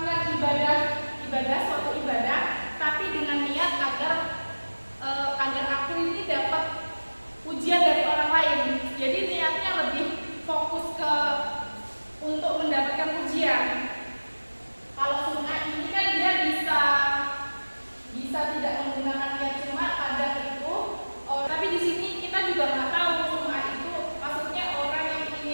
suatu ibadah, tapi dengan niat agar aku ini dapat pujian dari orang lain. Jadi niatnya lebih fokus untuk mendapatkan pujian. Kalau sum'ah ini kan dia bisa tidak menggunakan niat cuma kadang itu. Tapi di sini kita juga nggak tahu sum'ah itu maksudnya orang yang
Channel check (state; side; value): inverted; both; correlation -1.00